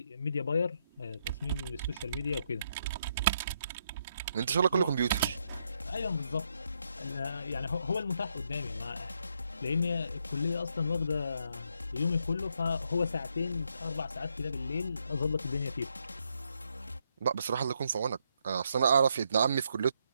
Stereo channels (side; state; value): both; inverted; correlation -0.77